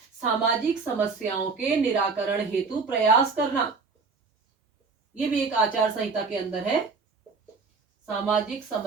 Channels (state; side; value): quieter; left; 4.6 dB